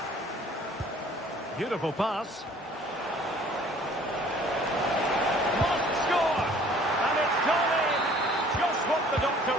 Beautiful pass. Must score! And it's gone in! Just what the doctor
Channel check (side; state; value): both; normal; correlation 0.54